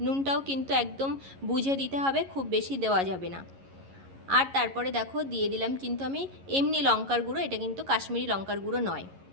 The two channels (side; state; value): left; late; 11 ms